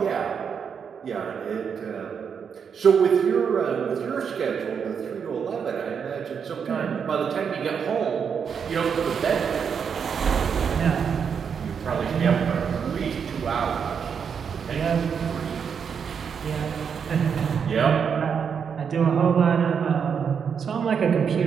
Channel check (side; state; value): left; quieter; 6.9 dB